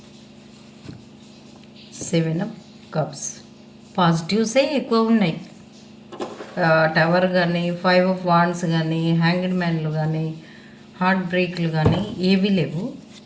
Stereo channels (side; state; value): both; identical; correlation 1.00